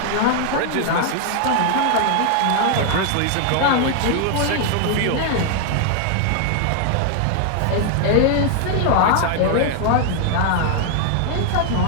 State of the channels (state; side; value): different; both; correlation 0.00